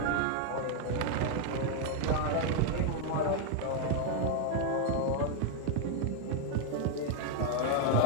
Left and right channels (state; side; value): different; both; correlation 0.00